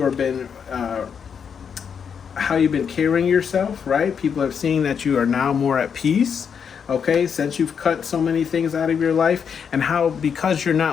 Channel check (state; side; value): quieter; right; 7.0 dB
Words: have been how you've been carrying yourself, right? People are seeing that you are now more at peace, okay, since you've cut so many things out of your life, and how, because you're